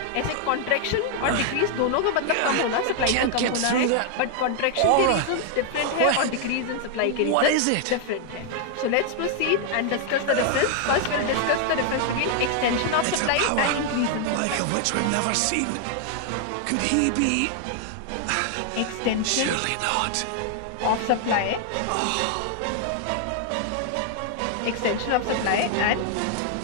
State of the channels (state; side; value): different; both; correlation 0.00